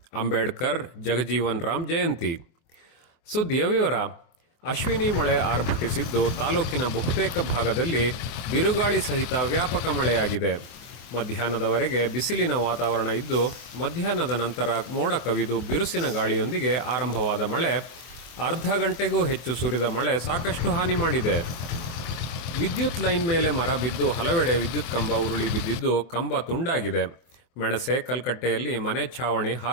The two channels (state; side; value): late; right; 24 ms